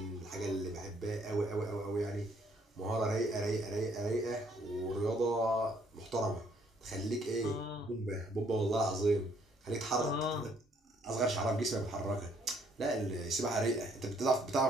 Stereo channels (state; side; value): normal; both; correlation 0.66